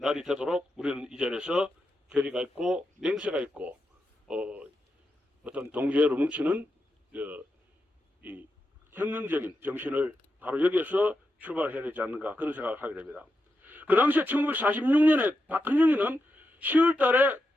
날이 되도록 우리는 이 자리에서 결의가 있고 맹세가 있고 어떤 동지애로 뭉치는 이 혁명적인 정신을 바로 여기에서 출발해야 되지 않는가, 그런 생각을 하게 됩니다. 그 당시에 1946년에 박헌영이는 10월 달에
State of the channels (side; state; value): both; normal; correlation 0.87